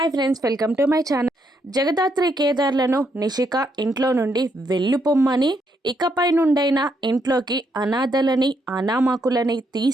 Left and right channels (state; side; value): normal; both; correlation 0.76